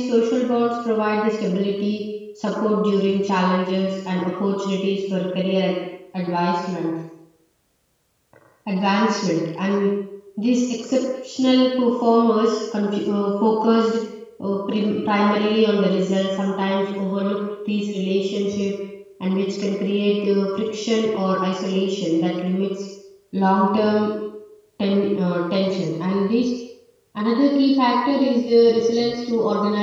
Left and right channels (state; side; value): identical; both; correlation 1.00